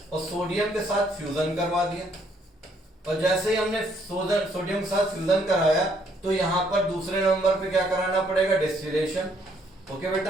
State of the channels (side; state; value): both; normal; correlation 0.68